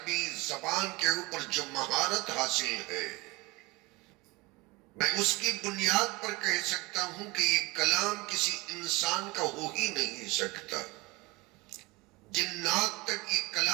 زبان کے اوپر جو مہارت حاصل ہے، میں اس کی بنیاد پر کہہ سکتا ہوں کہ یہ کلام کسی انسان کا ہو ہی نہیں سکتا، جنات تک یہ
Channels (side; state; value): left; quieter; 22.9 dB